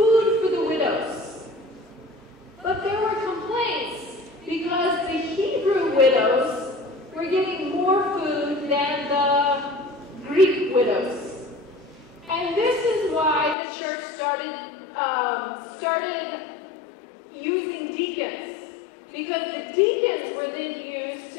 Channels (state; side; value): drops out; right; at 13.6 s